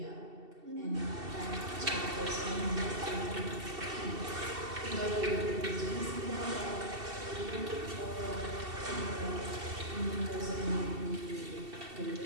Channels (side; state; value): left; late; 2.7 ms